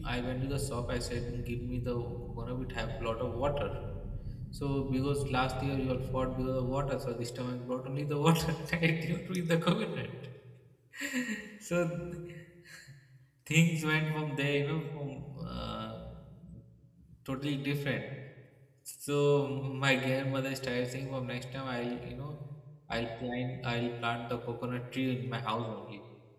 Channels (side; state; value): both; identical; correlation 1.00